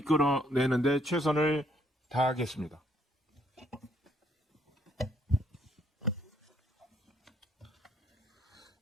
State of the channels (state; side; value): normal; both; correlation 0.68